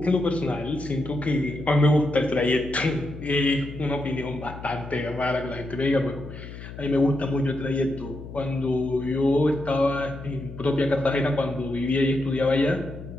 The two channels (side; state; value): left; noise; hum, 12 dB below the sound